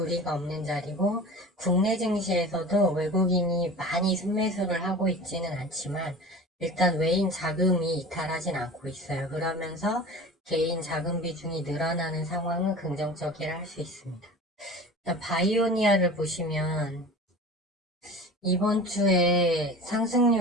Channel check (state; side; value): normal; both; correlation 0.37